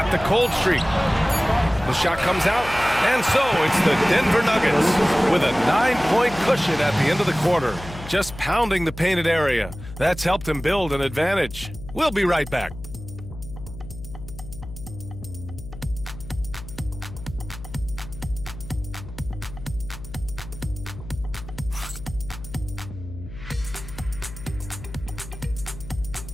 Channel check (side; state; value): left; noise; hum, 13 dB below the sound